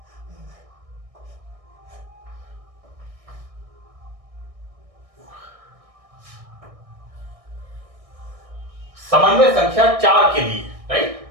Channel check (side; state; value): left; late; 1.6 ms